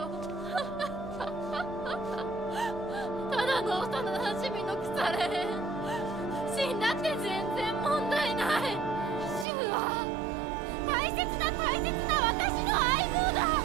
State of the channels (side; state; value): left; drops out; at 9.5 s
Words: ただの幼馴染の腐れ。死んだって全然問題ない。シュウは大切な私の相棒だ。